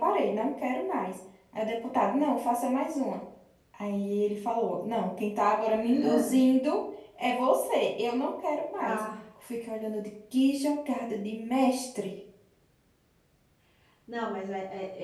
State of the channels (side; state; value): both; identical; correlation 1.00